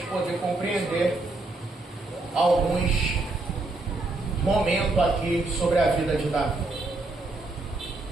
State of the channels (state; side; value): quieter; left; 3.0 dB